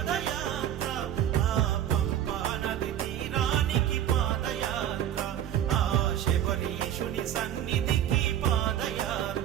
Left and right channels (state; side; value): quieter; left; 10.8 dB